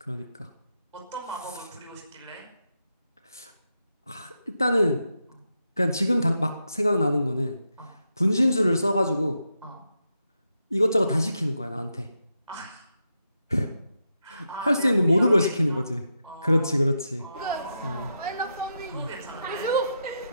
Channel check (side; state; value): both; inverted; correlation -0.84